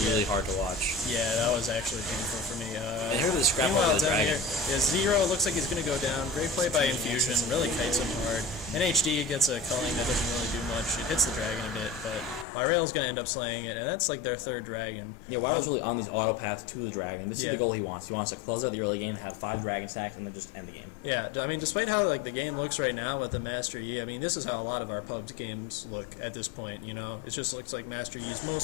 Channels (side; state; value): right; drops out; at 12.5 s